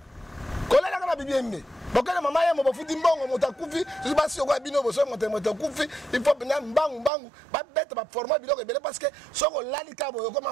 Kolala kana bibiembe. Bokana mama ya mo bafuti mbongo motakufi, je pas si okwa bino boso motakufi, il faut bina mbangu ba bête ba former biloko ebele parce que soko lali ka boyo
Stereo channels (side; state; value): left; drops out; at 7.1 s